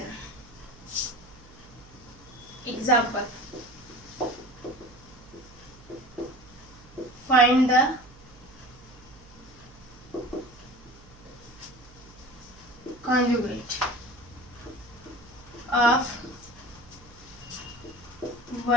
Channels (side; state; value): right; noise; hum, 23 dB below the sound